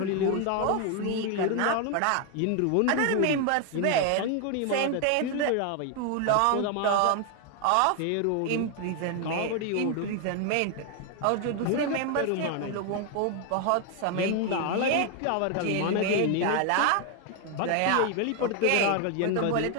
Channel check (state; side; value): different; both; correlation 0.01